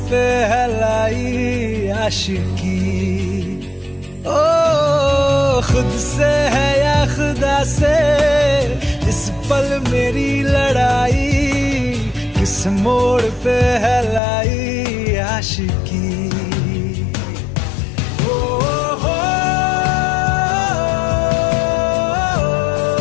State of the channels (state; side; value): drops out; right; at 14.2 s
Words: पे है लाई आशिकी। ओ खुद से है या खुदा से, इस पल मेरी लड़ाई, किस मोड़ पे है लाई आशिकी।